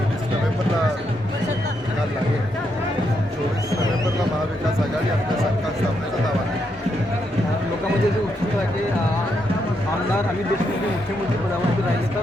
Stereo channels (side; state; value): both; normal; correlation 0.79